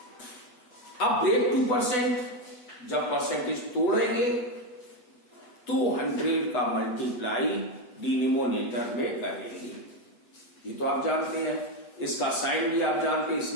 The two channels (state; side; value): late; right; 8.1 ms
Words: अब ब्रेक टू परसेंट, जब परसेंटेज तोड़ेंगे तो 100 का मल्टीप्लाई डिनोमिनेटर में करेंगे। ये तो आप जानते हैं, इसका साइन भी आप जानते हैं,